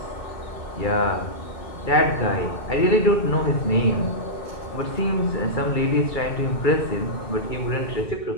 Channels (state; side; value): late; right; 2.3 ms